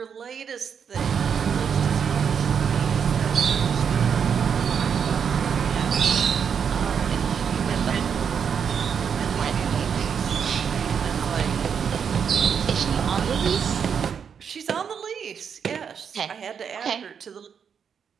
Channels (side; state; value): left; quieter; 7.2 dB